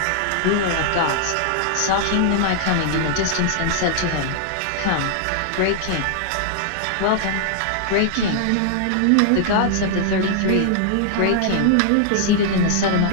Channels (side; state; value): both; different; correlation -0.01